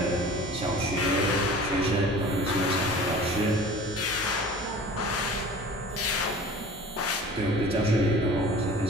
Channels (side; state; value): both; normal; correlation 0.42